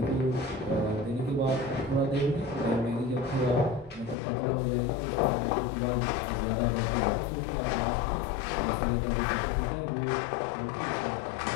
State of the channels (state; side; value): drops out; right; at 4.2 s